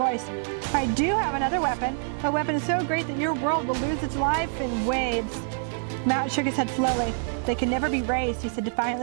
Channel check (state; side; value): silent; left; 61 dB below the other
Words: I do have another weapon. A weapon so great that your world will lose its life in waves. Mowat shook his head slowly. They can never be raised, he said